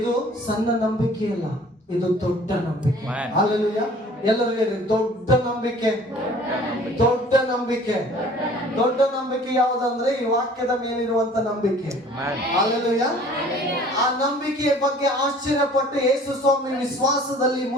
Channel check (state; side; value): normal; both; correlation 0.50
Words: ಸಣ್ಣ ನಂಬಿಕೆ ಅಲ್ಲ, ಇದು ದೊಡ್ಡ ನಂಬಿಕೆ. ಹಲ್ಲೆಲೂಯಾ. ಎಲ್ಲರೂ ಹೇಳಿ, ದೊಡ್ಡ ನಂಬಿಕೆ. ದೊಡ್ಡ ನಂಬಿಕೆ ಯಾವುದಂದ್ರೆ ಈ ವಾಕ್ಯದ ಮೇಲಿರುವಂತ ನಂಬಿಕೆ. ಹಲ್ಲೆಲೂಯಾ. ಆ ನಂಬಿಕೆಯ ಬಗ್ಗೆ ಆಶ್ಚರ್ಯಪಟ್ಟು ಯೇಸು ಸ್ವಾಮಿ ವಿಶ್ವಾಸದಲ್ಲಿ